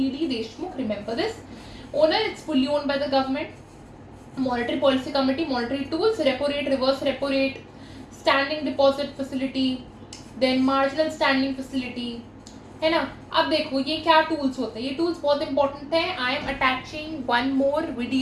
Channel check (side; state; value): both; identical; correlation 1.00